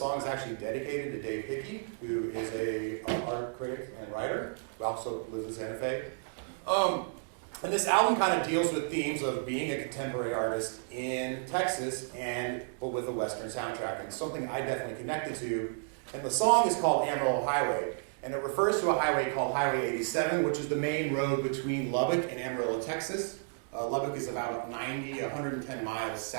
is actually dedicated to Dave Hickey, who is an art critic and writer, who also lives in Santa Fe. And this album kind of deals with themes of being a contemporary artist in Texas, but with a Western soundtrack, and something I definitely connected to. And the song is called Amarillo Highway, and it refers to a highway called Highway 87, which is the main road between Lubbock and Amarillo, Texas. Lubbock is about 110 miles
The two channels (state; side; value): silent; left; digital silence